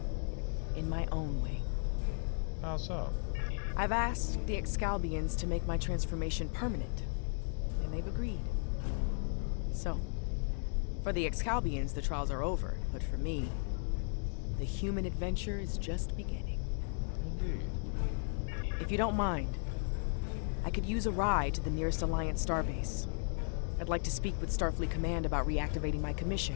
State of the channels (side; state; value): right; silent; 54 dB below the other